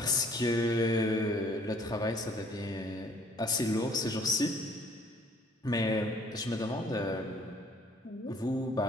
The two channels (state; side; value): normal; both; correlation 0.58